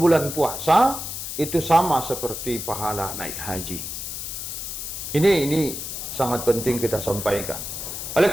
puasa itu sama seperti pahala naik haji. Ini sangat penting kita sampaikan. Oleh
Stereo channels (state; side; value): noise; left; hiss, 6 dB below the sound